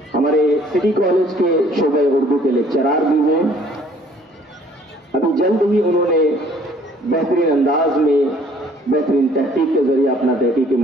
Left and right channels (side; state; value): both; normal; correlation 0.58